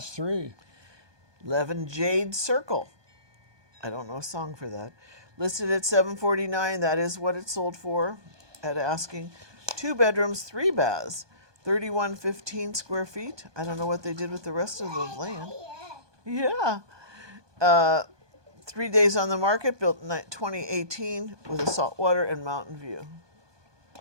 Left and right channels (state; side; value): late; left; 1.2 ms